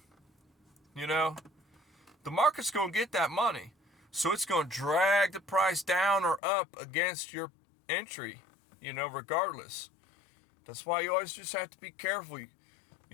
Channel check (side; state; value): right; drops out; at 6.4 s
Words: the market's going to get that money. So it's going to drag the price down or up against your entry, regardless. That's why you always just have to be careful.